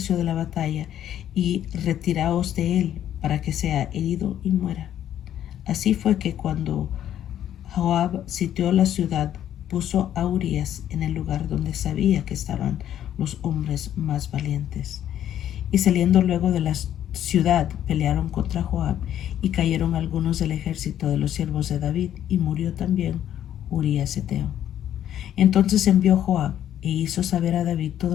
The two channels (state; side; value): quieter; right; 10.9 dB